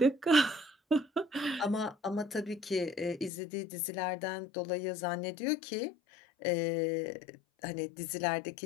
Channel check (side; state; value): right; drops out; at 3.3 s